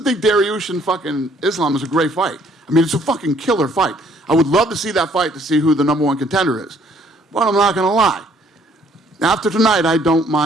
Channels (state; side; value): normal; both; correlation 0.63